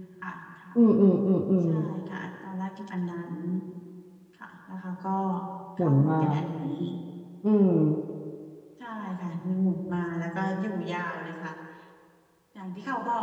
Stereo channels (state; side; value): identical; both; correlation 1.00